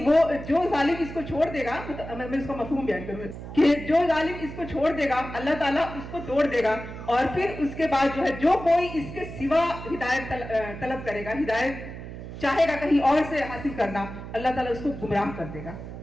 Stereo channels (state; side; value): noise; right; hum, 11 dB below the sound